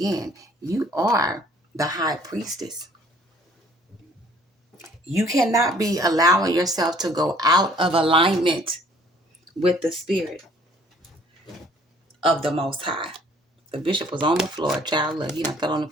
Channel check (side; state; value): both; normal; correlation 0.57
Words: you are the High Priestess. You cannot be allowing yourself to go out of alignment with the spirit of the Most High. The bishop was on the floor. Child, look, he done fell on the